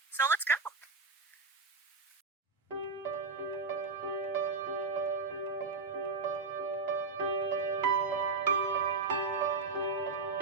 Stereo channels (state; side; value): quieter; left; 4.4 dB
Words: So let's go!